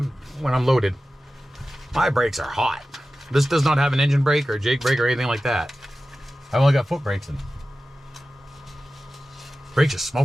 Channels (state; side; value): normal; both; correlation 0.94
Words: when I'm loaded. My brakes are hot. This does not have an engine brake or Jake brake or anything like that. I've only got foot brakes in. Brakes are